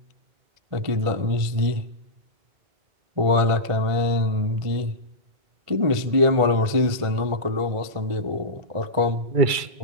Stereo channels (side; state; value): left; late; 1.5 ms